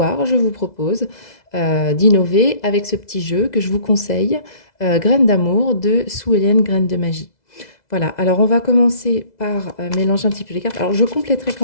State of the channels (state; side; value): late; right; 2.0 ms